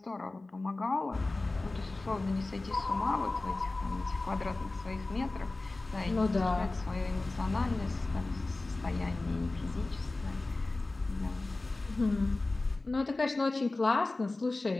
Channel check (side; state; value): right; quieter; 3.1 dB